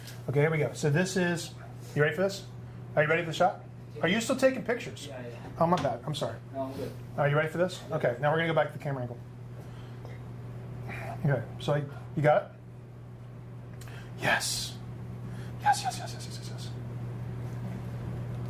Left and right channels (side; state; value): both; identical; correlation 1.00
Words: here we go. So this is, you ready for this? Are you ready for the shot? Are you still taking pictures? Yeah. Oh, my bad. I'm sorry. No, I'm good. Are you ready for this? Okay, now we're going to go back to the camera angle. Okay, so you got it? Yes. Yes.